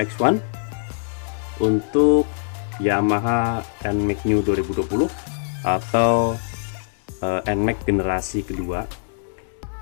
X1 untuk Yamaha NMAX New 2020 atau NMAX generasi kedua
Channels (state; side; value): silent; right; digital silence